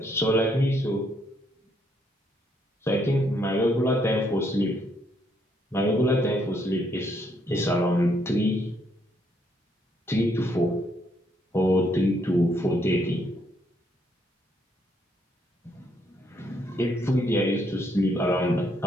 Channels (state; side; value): normal; both; correlation 0.72